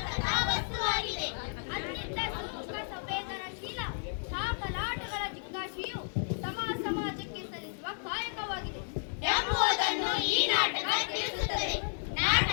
ಕಥಾವಸ್ತುವಾಗಿದೆ. ಅತ್ಯಂತ ಸೂಕ್ಷ್ಮ ಸಂವೇದನಶೀಲ ಸಾಕಲಾಟಗಳ ಜಿಜ್ಞಾಸೆಯು ಸಮಾಜಕ್ಕೆ ಸಲ್ಲಿಸುವ ಕಾಯಕವಾಗಿದೆ ಎಂಬುದನ್ನು ಈ ನಾಟಕ ತಿಳಿಸುತ್ತದೆ.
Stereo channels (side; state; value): right; silent; digital silence